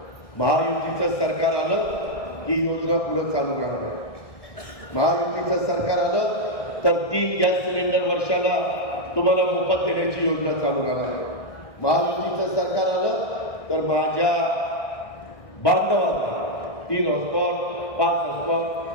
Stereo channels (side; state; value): right; late; 1.6 ms